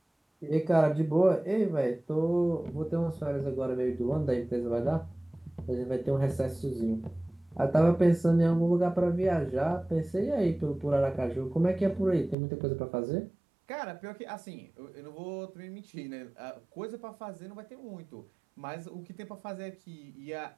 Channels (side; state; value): left; drops out; at 12.4 s